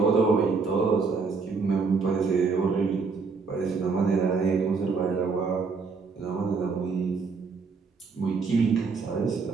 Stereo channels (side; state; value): left; quieter; 4.8 dB